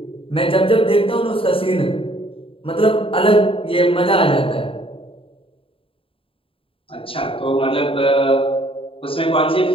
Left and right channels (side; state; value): right; late; 0.26 ms